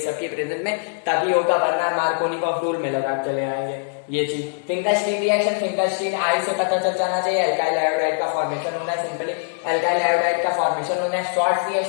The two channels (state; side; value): silent; right; digital silence